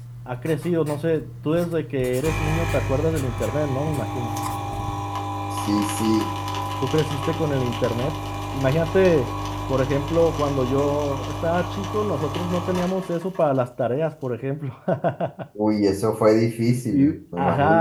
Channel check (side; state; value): both; identical; correlation 1.00